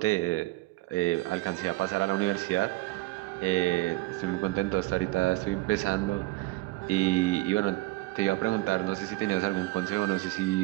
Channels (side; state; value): left; quieter; 20.3 dB